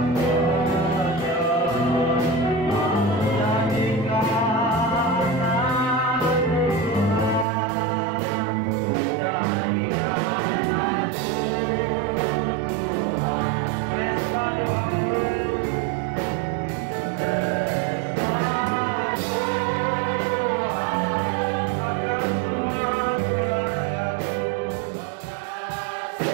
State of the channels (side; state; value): left; drops out; at 7.5 s